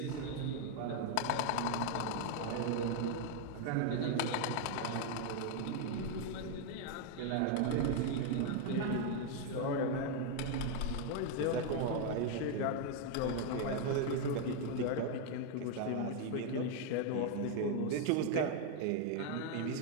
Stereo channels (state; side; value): different; both; correlation 0.00